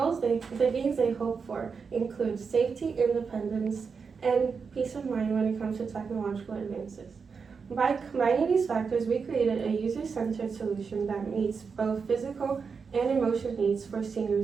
gains they hope for include safety, independence, and peace of mind when it comes to technological advances. By combining these factors, we created a user-centered solution that meets both physical and emotional needs for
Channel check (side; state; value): left; quieter; 5.5 dB